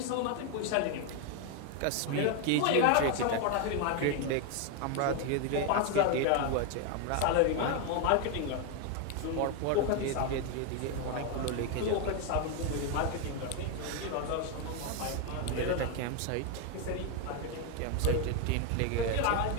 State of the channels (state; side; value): different; both; correlation 0.01